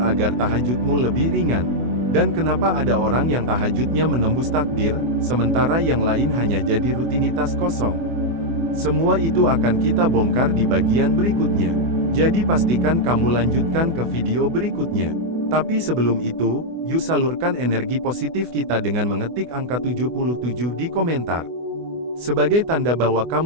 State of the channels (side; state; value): left; late; 24 ms